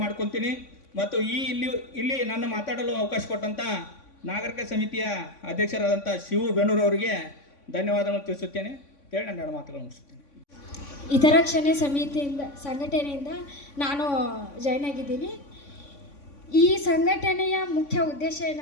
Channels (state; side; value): late; right; 3.5 ms